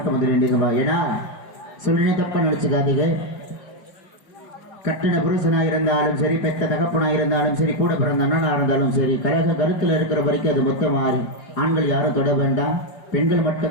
வந்து வேண்டியதுவா. ஏன்னா சொல்லினே தப்பா நினைச்சுக்காதீங்க. கட்டின புருஷனா இருந்தாலும் சரி, பெத்த தகப்பனா இருந்தாலும் சரி, கூட பிறந்த அண்ணனா இருந்தாலும் சரி, கழக கருத்துல இருக்கிற வரைக்கும் அது மொத்தம் மாறி ஆண்கள் யாரும் தொட வேண்டாம், பெண்கள்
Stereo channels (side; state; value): right; late; 4.8 ms